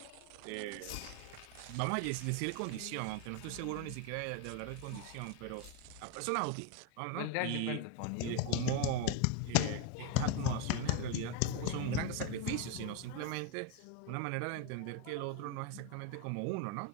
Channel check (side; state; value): both; different; correlation 0.01